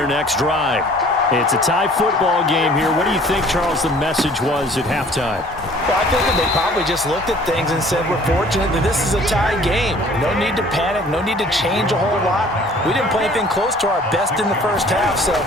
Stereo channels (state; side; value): normal; both; correlation 0.52